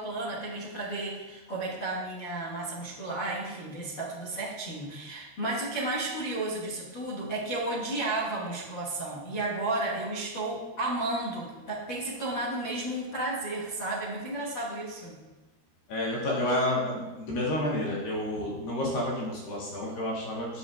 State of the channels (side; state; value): right; late; 13 ms